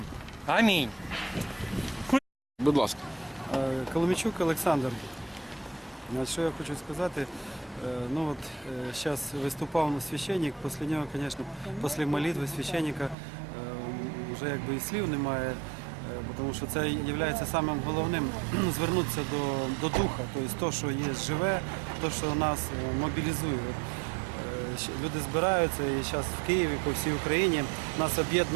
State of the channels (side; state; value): left; drops out; at 13.2 s